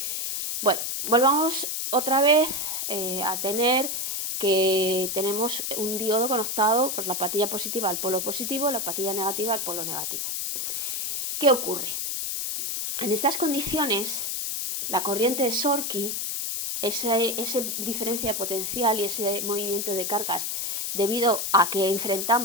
Bueno, volvamos otra vez a tener que tenemos un diodo conectado por la patilla positiva al polo positivo, la patilla negativa al polo negativo. ¿Qué ocurre? En estas condiciones, la corriente de Shorty, esa diferencia potencial y ese movimiento de cargas, debido a que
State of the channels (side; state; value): left; noise; hiss, 2 dB below the sound